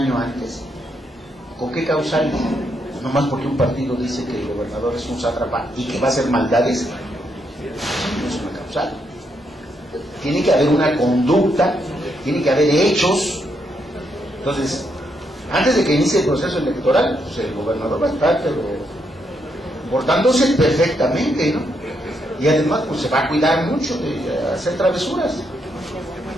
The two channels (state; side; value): normal; both; correlation 0.78